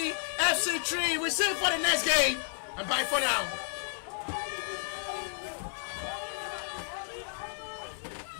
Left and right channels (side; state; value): right; silent; digital silence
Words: FC 3. We see you for the next game. And bye for now.